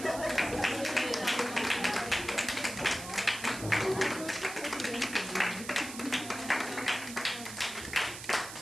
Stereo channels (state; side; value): noise; right; hiss, 11 dB below the sound